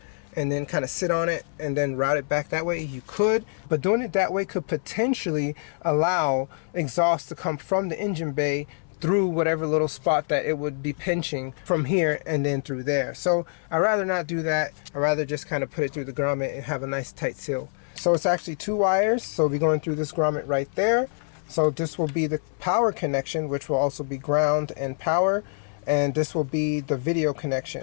and then kind of sit on it and then route it back that way. You could, but doing it that way could potentially allow exhaust to come from the engine bay through whatever little spot that it would be pinching from here and then through there. So I'd rather not do that. I'd rather just kind of put it through the grommet and have a nice tight seal. So it's actually 2 wires, so we'll be going through this grommet right there. So this will be the power connection, which will also be ground and power, and this will be the video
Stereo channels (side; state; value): right; silent; 61 dB below the other